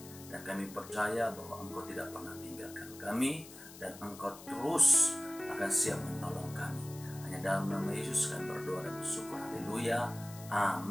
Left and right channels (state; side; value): noise; left; hiss, 17 dB below the sound